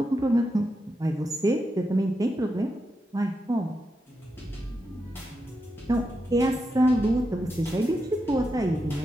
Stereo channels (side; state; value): both; normal; correlation 0.86